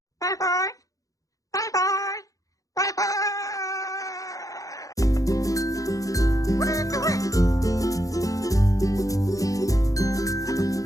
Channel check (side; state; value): right; late; 0.16 ms